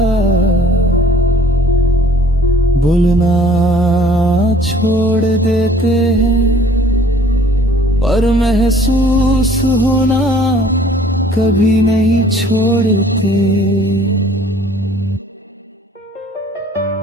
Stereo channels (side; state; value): both; normal; correlation 0.55